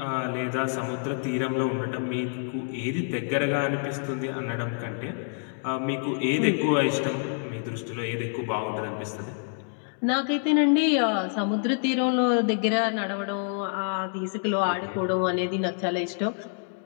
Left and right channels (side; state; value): right; silent; 58 dB below the other